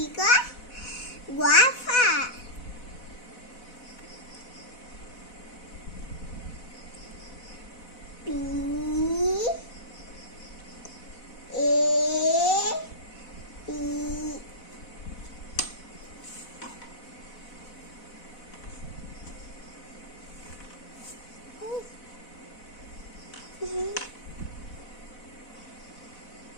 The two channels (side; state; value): right; late; 4.1 ms